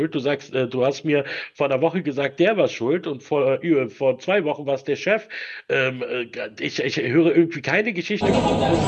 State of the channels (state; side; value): identical; both; correlation 1.00